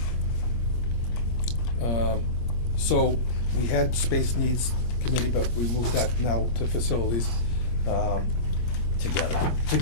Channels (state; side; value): late; right; 25 ms